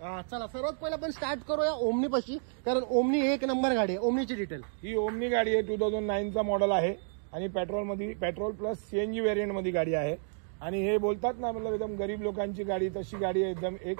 चला सर्वात पहिला आपण स्टार्ट करूया ओमनी पाशी, कारण ओमनी एक नंबर गाडी आहे। ओमनीची डिटेल, ही ओमनी गाडी आहे, 2009 चा मॉडेल आहे आणि पेट्रोल प्लस CNG व्हेरियंट मध्ये गाडी आहे। आणि हे बोलतात ना, मतलब एकदम गरीब लोकांची गाडी, तशी गाडी आहे, एकदम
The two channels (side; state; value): left; silent; digital silence